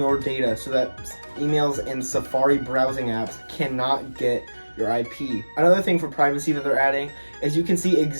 data so that emails and Safari browsing apps cannot get your IP. Another thing for privacy that they're adding is you can see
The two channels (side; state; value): both; inverted; correlation -1.00